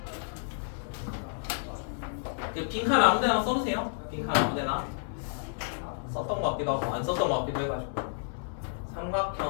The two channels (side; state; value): right; silent; digital silence